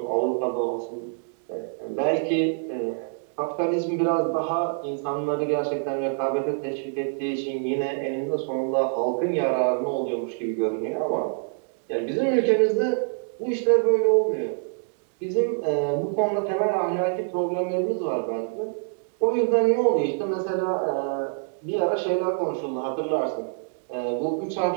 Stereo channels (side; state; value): left; silent; digital silence